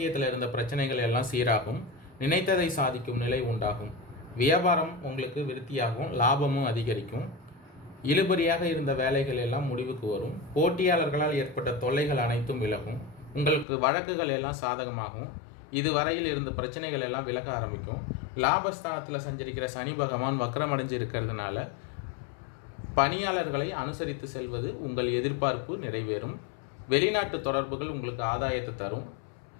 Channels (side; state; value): right; drops out; at 13.7 s